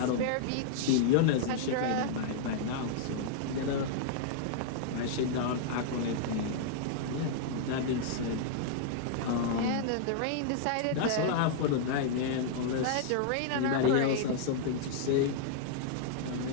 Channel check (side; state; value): both; different; correlation -0.01